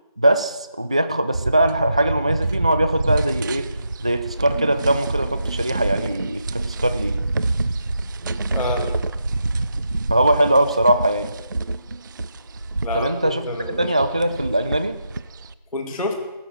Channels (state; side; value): inverted; both; correlation -0.82